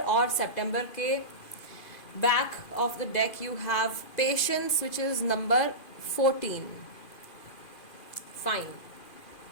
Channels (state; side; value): late; right; 2.4 ms